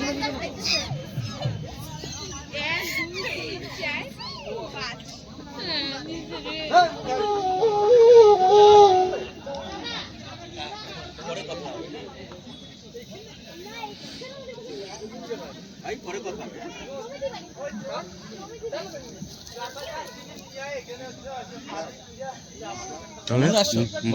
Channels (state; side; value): identical; both; correlation 1.00